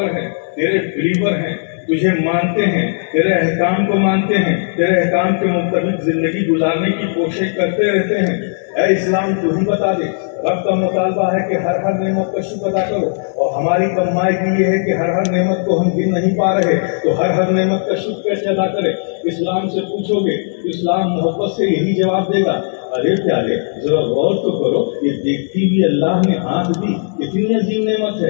ہیں، تیرے بلیور ہیں، تجھے مانتے ہیں، تیرے احکام کو مانتے ہیں، تیرے احکام کے مطابق زندگی گزارنے کی کوشش کرتے رہتے ہیں. اے اسلام، تو ہی بتا دے. رب کا مطالبہ ہے کہ ہر نعمت کا شکر ادا کرو، اور ہماری کمائی یہ ہے کہ ہر نعمت کو ہم گن نہیں پا رہے، تو ہر نعمت کا شکر کیسے ادا کرے؟ اسلام سے پوچھو گے، اسلام محبت سے یہی جواب دے گا. ارے پیارے، ذرا غور تو کرو، یہ دیکھتی بھی اللہ نے آنکھ دی، کتنی عظیم نعمت ہے.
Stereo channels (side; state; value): right; silent; digital silence